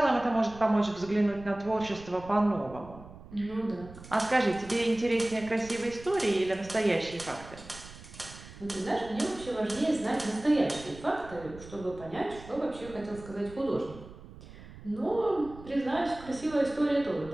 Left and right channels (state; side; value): noise; right; rumble, 17 dB below the sound